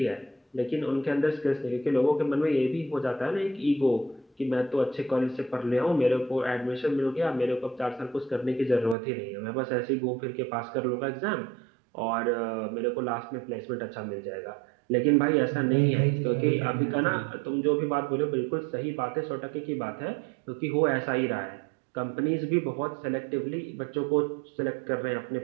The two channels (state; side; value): drops out; left; at 9.0 s